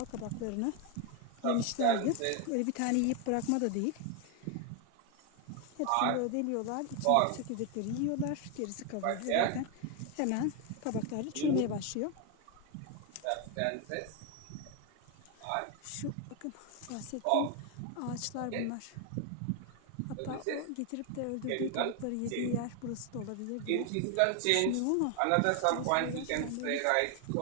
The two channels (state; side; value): different; both; correlation 0.01